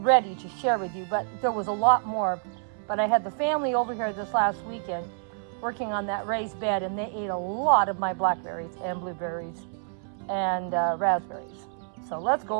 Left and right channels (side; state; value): left; silent; 60 dB below the other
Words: to share with you, but there was a lot more. But I had the family over here this last weekend working on that raised bed, and they ate a lot of my blackberries and blueberries and raspberries. So let's go